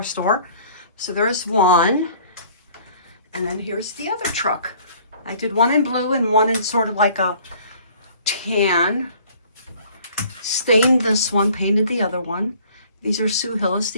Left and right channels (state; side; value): inverted; both; correlation -0.54